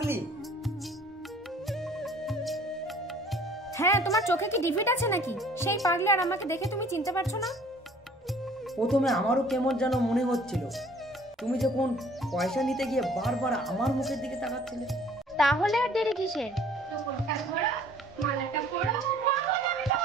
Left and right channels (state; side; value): normal; both; correlation 0.54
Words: হ্যাঁ, তোমার চোখে কি ডিফিট আছে নাকি? সেই পাগলি আর আমাকে দেখে তুমি চিনতে পারছো না? প্রথমে আমারও কেমন যেন মনে হচ্ছিল, তুমি যখন পয়সা নিতে গিয়ে বারবার আমার মুখের দিকে তাকাচ্ছিলে। তাহলে আর দেরি কিসের? মালাটা পড়ো।